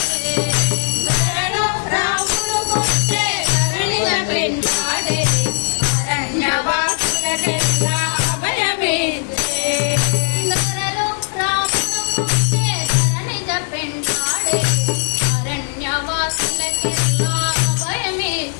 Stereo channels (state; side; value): silent; right; 63 dB below the other